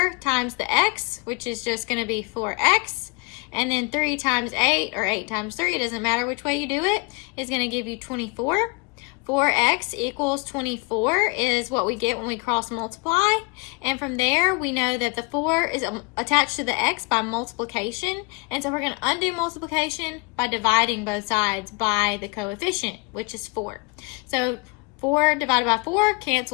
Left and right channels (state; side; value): quieter; right; 28.4 dB